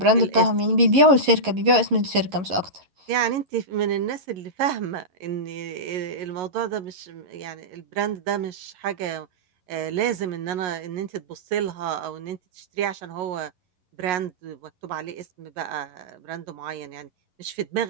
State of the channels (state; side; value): late; left; 11 ms